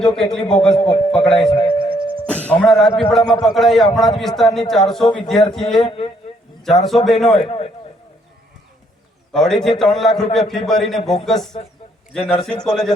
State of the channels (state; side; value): normal; both; correlation 0.69